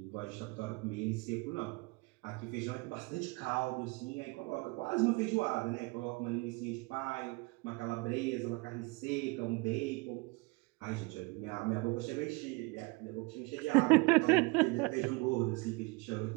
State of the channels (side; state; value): left; quieter; 26.0 dB